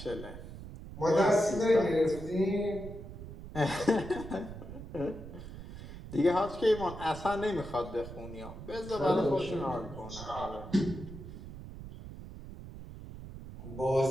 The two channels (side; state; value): right; noise; rumble, 12 dB below the sound